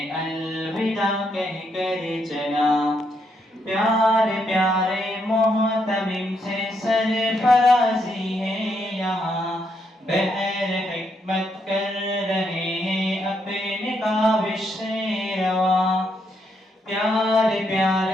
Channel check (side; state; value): both; normal; correlation 0.77